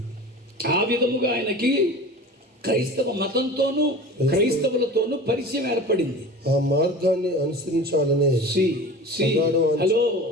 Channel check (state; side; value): normal; both; correlation 0.36